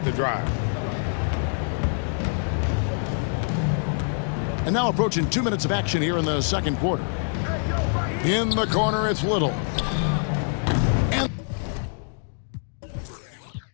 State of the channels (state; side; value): silent; right; 58 dB below the other